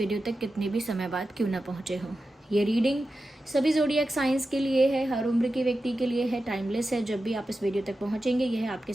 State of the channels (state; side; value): normal; both; correlation 0.92